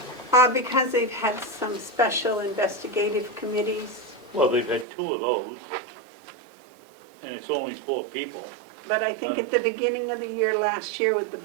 Because they've had some special investigative committees, Well, they've had 2 of those, and it's only 4 people. but I think at the beginning of the year, last year with the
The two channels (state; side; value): drops out; left; at 4.9 s